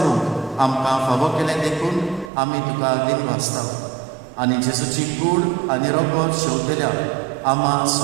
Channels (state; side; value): drops out; left; at 2.3 s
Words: आमकां फावो केलें देखून आमी तुका दिन वाचता. आनी जेजूची कूड आनी रगत शेवतल्या आम्हा